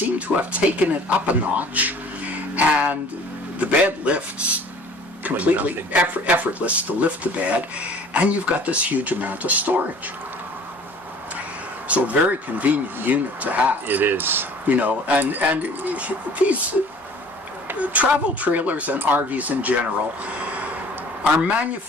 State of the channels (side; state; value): both; normal; correlation 0.49